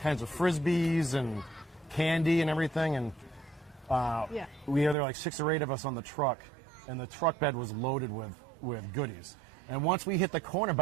of frisbees and candy and everything, and we there were like 6 or 8 of us on the truck, and the truck bed was loaded with goodies. And once we hit the corner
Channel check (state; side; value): drops out; left; at 5.0 s